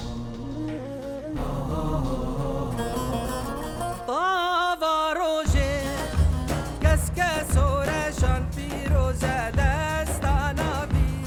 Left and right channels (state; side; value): identical; both; correlation 1.00